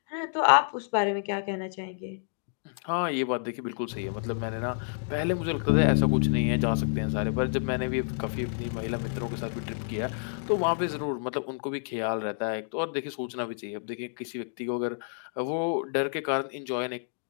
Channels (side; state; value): right; silent; digital silence